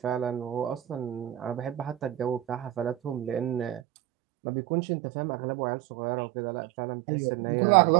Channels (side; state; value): left; drops out; at 3.8 s